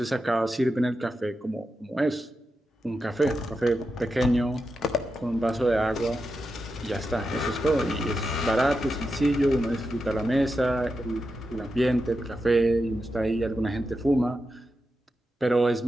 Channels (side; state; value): both; normal; correlation 0.89